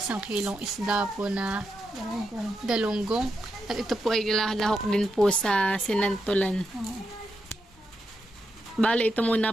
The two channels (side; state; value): both; normal; correlation 0.85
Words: kilong isda po na galunggong. At ito po ay lahok din po sa sinantulan. Bali ito